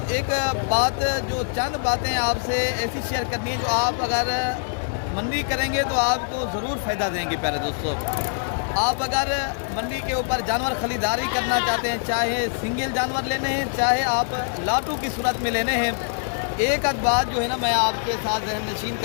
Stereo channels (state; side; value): silent; right; digital silence